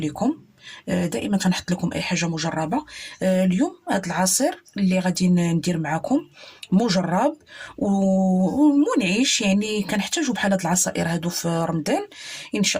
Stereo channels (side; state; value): both; identical; correlation 1.00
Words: دائما تنحط لكم اي حاجه مجربه. اليوم هذا العصير اللي غادي ندير معكم مجرب ومنعش، يعني كنحتاجوا بحال هاد العصائر هادو في رمضان ان